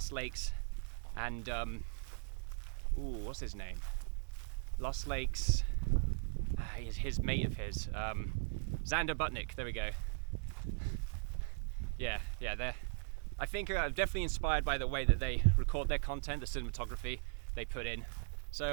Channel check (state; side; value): silent; left; 52 dB below the other